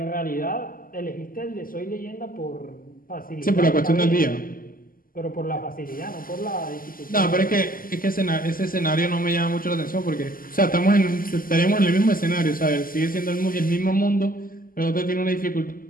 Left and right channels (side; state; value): right; late; 0.41 ms